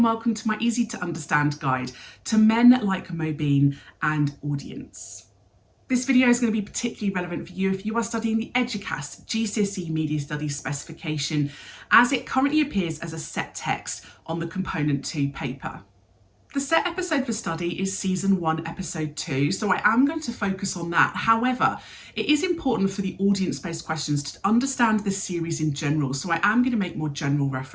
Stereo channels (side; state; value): both; identical; correlation 1.00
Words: welcome to my easy to understand guide to men like Mobeen and audience. This video is going to be particularly relevant for you if you are studying the Eduqas GCSE Media Studies specification as it currently appears as a set text on the Component 2 paper. The set episode for study is Season 1, Episode 2, so I am going to focus on that. However, it is important for the audience-based questions to understand this series in general, so I am going to make more general